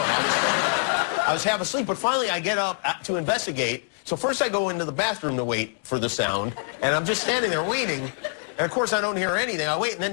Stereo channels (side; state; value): right; silent; digital silence